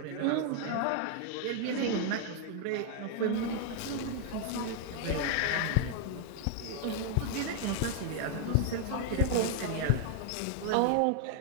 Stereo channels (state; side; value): different; both; correlation 0.00